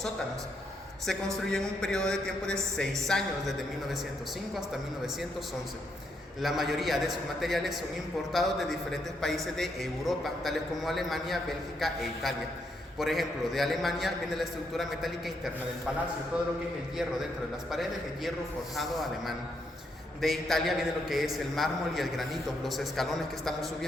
Se construyó en un periodo de tiempo de 6 años, desde 1905 hasta 1911. La mayoría de sus materiales son importados de diferentes países de Europa, tales como Alemania, Bélgica e Italia. Por ejemplo, de Alemania viene la estructura metálica interna del palacio, todo lo que es el hierro dentro de las paredes, el hierro forjado alemán. De Italia viene lo que es el mármol y el granito. Los escalones que estamos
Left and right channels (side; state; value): both; normal; correlation 0.77